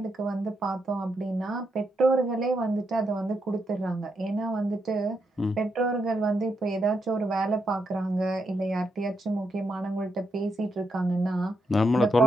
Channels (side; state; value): both; normal; correlation 0.81